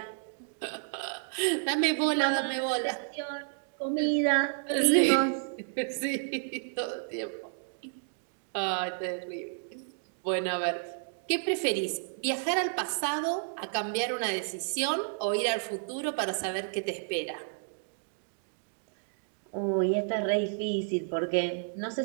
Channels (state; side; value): silent; left; digital silence